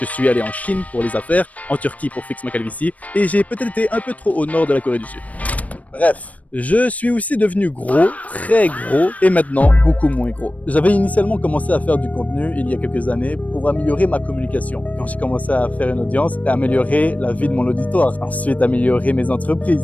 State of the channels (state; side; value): late; right; 0.069 ms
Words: Je suis allé en Chine pour les affaires, en Turquie pour fixer ma calvitie et j'ai peut-être été un peu trop au nord de la Corée du Sud. Bref, je suis aussi devenu gros, très gros, et maintenant beaucoup moins gros. J'avais initialement commencé à faire du contenu il y a quelques années pour améliorer ma communication. Quand j'ai commencé à faire une audience, et améliorer la vie de mon auditoire. Ensuite, améliorer mes